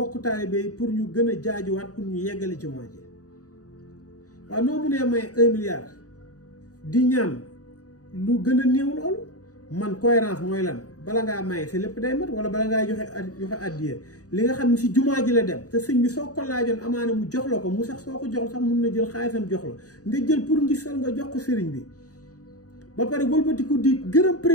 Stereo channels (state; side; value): late; right; 0.67 ms